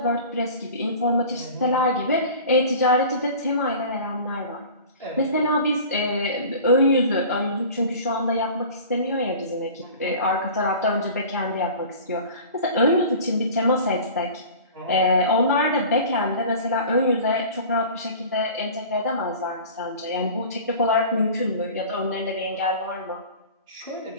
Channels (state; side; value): inverted; both; correlation -0.40